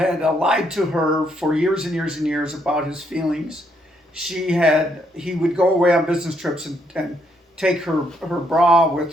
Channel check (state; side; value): normal; both; correlation 0.74